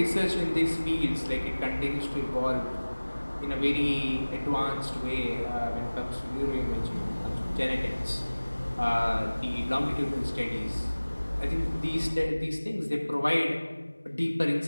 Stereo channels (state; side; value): inverted; both; correlation -1.00